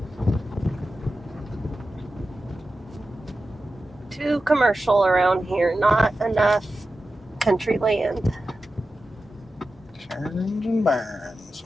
Too commercial around here. Not enough country land. Karens and barons.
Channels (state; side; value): normal; both; correlation 0.93